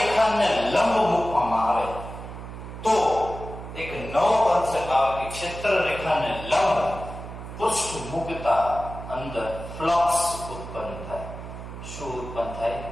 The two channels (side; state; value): right; noise; hum, 11 dB below the sound